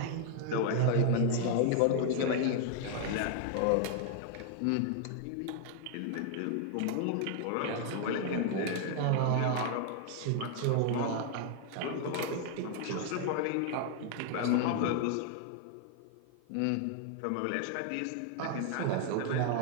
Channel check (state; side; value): different; both; correlation 0.00